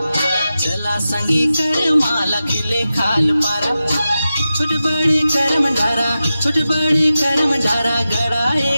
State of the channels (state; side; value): inverted; both; correlation -0.92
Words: चला संगी कर माला खिले खाल पारा छोट बड़े कर्म धारा छोट बड़े कर्म धारा गड़ाए